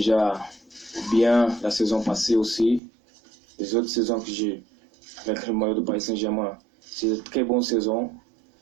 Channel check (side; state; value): left; drops out; at 2.8 s